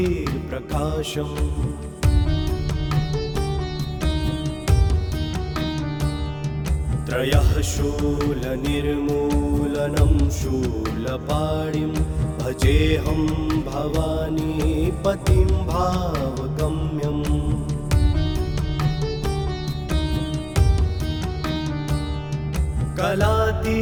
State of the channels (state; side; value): identical; both; correlation 1.00